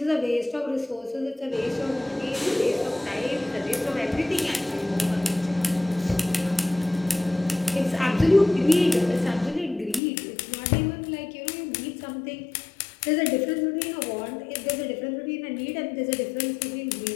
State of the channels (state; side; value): drops out; right; at 10.0 s